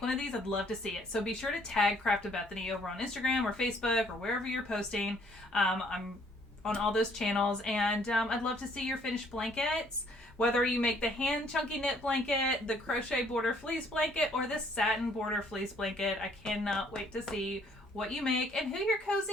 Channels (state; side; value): normal; both; correlation 0.63